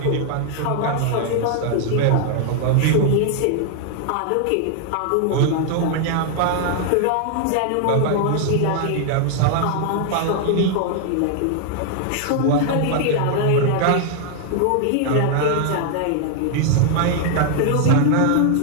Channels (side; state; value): both; different; correlation 0.00